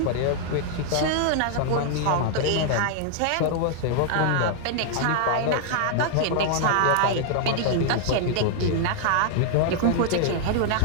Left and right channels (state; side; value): different; both; correlation -0.01